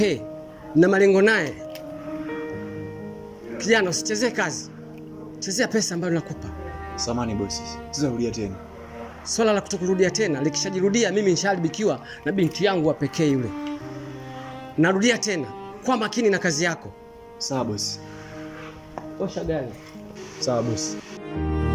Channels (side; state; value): both; identical; correlation 1.00